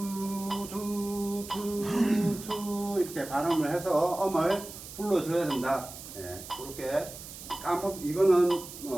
이렇게 발음을 해서 음을 불러줘야 된다. 그렇게 이거는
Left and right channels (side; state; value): right; noise; hiss, 13 dB below the sound